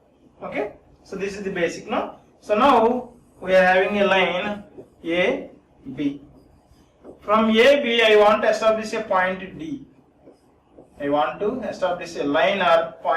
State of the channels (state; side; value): identical; both; correlation 1.00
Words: okay, so this is the basic now. So now we are having a line A, B. From A, B I want to establish a point D. I want to establish a line or